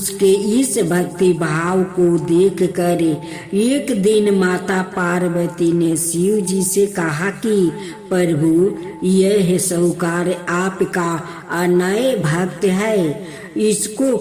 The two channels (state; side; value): identical; both; correlation 1.00